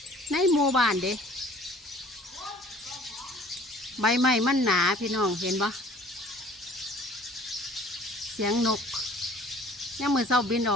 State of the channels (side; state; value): both; normal; correlation 0.52